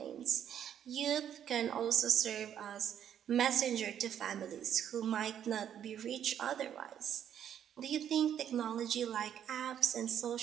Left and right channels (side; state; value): left; quieter; 9.6 dB